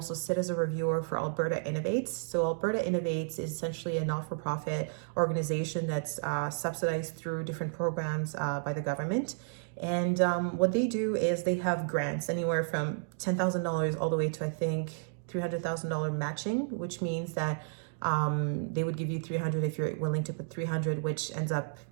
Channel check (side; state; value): left; silent; digital silence